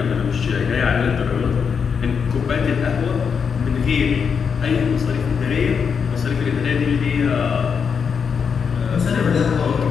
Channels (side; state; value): right; quieter; 6.4 dB